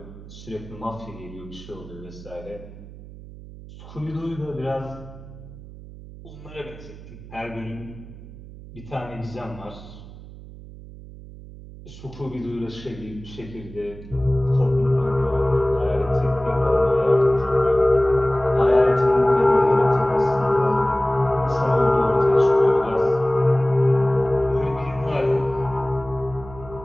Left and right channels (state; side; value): noise; right; hum, 16 dB below the sound